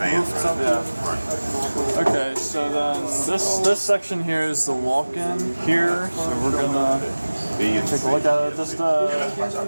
running. Yeah. Okay, so then this section here is the walk-in here. So we're gonna take a look at it. Just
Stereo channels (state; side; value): inverted; both; correlation -1.00